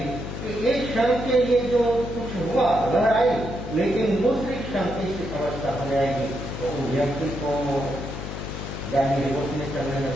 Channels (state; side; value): noise; left; hum, 7 dB below the sound